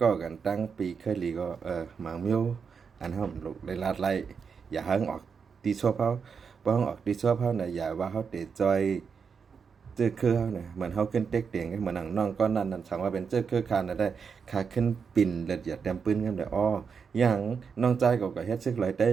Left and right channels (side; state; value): left; quieter; 6.0 dB